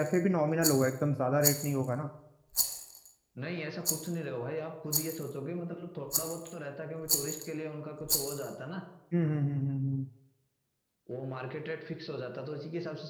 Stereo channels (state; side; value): identical; both; correlation 1.00